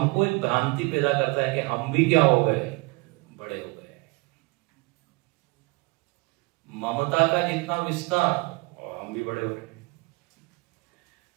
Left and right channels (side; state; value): left; quieter; 26.5 dB